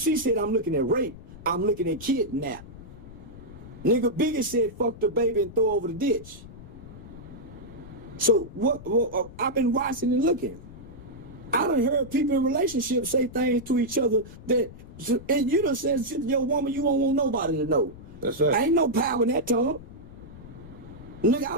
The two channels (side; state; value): left; noise; rumble, 16 dB below the sound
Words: said, I'm looking at rape. I'm looking at kidnap. Nigga Biggie said, fuck the baby and throw over the ditch. So what I've been watching and looking. I done heard people in relationships say things to each other that, and you done said to your woman, you don't want nobody to know. That's right. Ain't no power in that tongue. Nigga, I